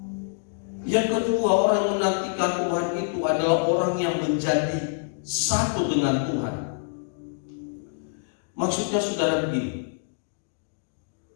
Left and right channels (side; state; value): right; silent; digital silence